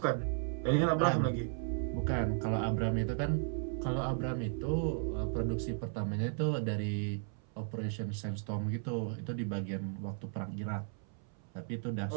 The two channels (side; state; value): left; silent; 54 dB below the other